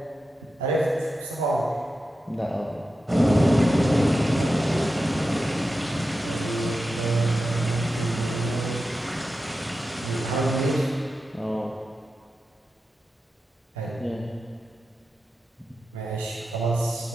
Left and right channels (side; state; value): both; normal; correlation 0.91